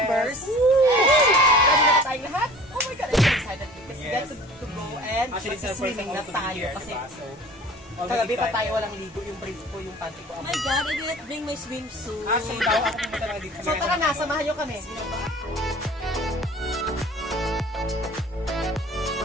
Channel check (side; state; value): both; normal; correlation 0.45